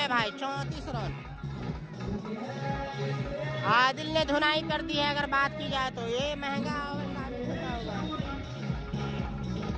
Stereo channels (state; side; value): identical; both; correlation 1.00